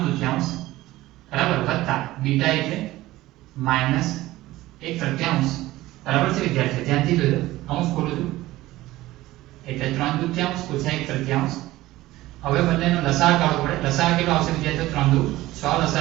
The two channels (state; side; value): quieter; left; 17.0 dB